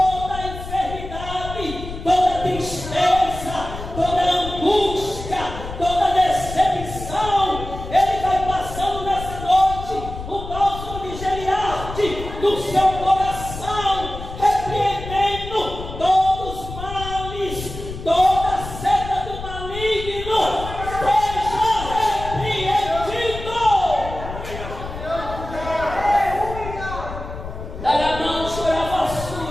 a enfermidade, toda a tristeza, toda a angústia, toda a decepção. Ele vai passando nessa noite o bálsamo de Gileade no seu coração, repreendendo todos os males, toda a seta do maligno, seja repreendido. Daramão chorava a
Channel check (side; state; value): left; noise; rumble, 10 dB below the sound